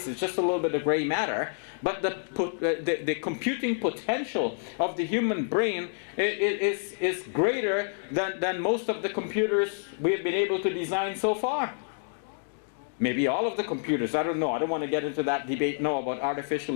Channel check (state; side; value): silent; right; digital silence